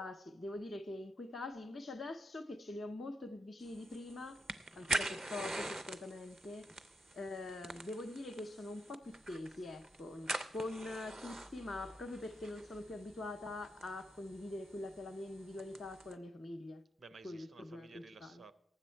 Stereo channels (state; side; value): normal; both; correlation 0.84